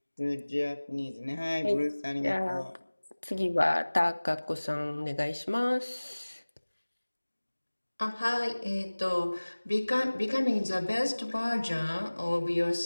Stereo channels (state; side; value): inverted; both; correlation -1.00